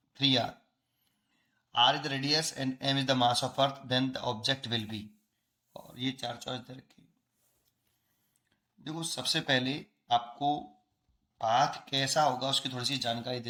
3r। R is the radius and M is the mass of earth, then the object will be. और ये चार choice दे रखी। देखो, सबसे पहले आपको path कैसा होगा उसकी थोड़ी सी जानकारी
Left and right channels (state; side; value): identical; both; correlation 1.00